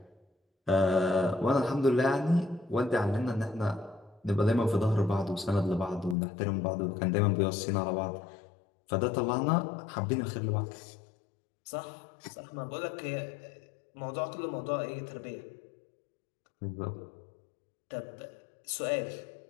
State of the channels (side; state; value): right; drops out; at 6.2 s